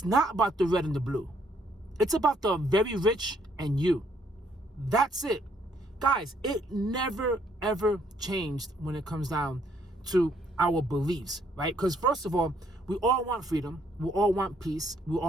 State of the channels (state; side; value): normal; both; correlation 0.68